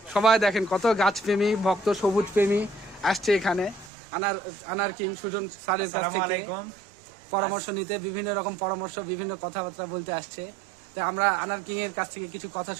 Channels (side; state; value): left; drops out; at 3.9 s